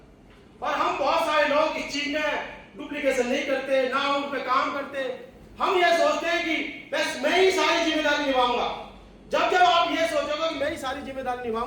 और हम बहुत सारे लोग इस चीज में डुप्लीकेशन नहीं करते, ना उन पे काम करते। हम ये सोचते हैं कि बस मैं ही सारी जिम्मेदारी निभाऊंगा। जब जब आप ये सोचोगे कि मैं ही सारी जिम्मेदारी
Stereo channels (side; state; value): both; identical; correlation 1.00